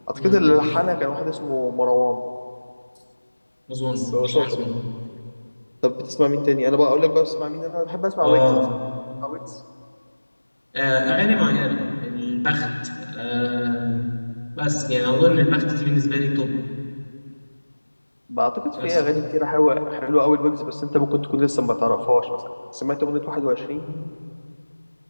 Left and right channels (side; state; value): both; inverted; correlation -1.00